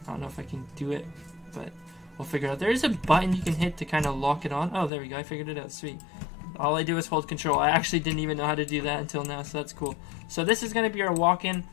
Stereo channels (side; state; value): right; drops out; at 4.9 s